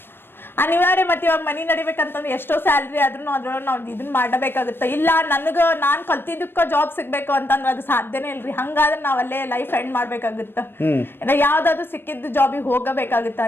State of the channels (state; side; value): late; right; 0.10 ms